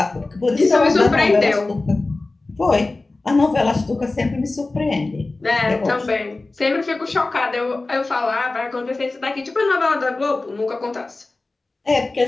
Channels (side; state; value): right; quieter; 3.3 dB